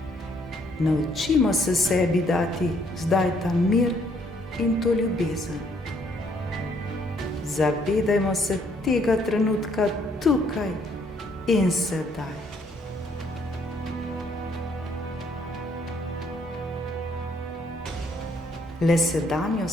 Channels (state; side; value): normal; both; correlation 0.67